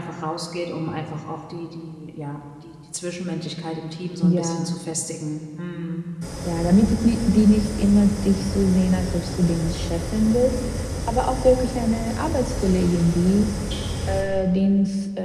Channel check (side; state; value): both; identical; correlation 1.00